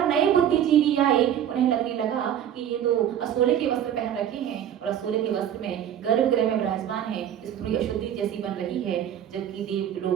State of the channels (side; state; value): left; quieter; 10.0 dB